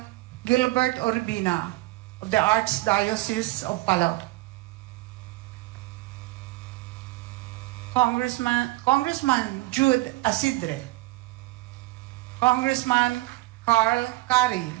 Gilbert Urbina of the Archdiocese of Palaw. Congressman Jude Asidre. Congressman Carl Kari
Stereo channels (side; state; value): left; quieter; 20.6 dB